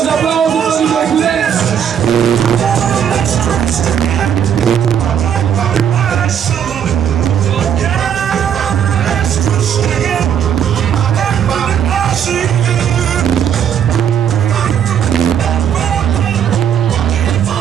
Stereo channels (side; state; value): left; quieter; 8.8 dB